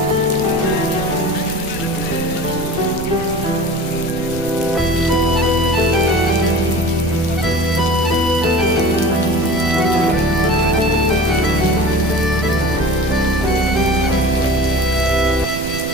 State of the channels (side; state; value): right; noise; rumble, 11 dB below the sound